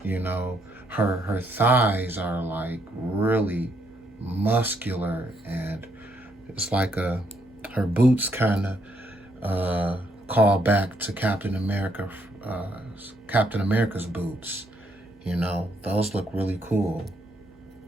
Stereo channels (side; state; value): right; noise; hum, 29 dB below the sound